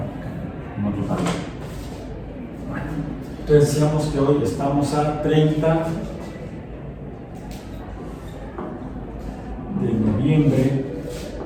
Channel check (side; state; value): both; identical; correlation 1.00